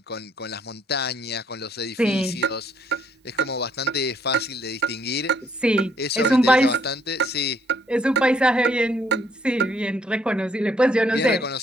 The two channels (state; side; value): normal; both; correlation 0.67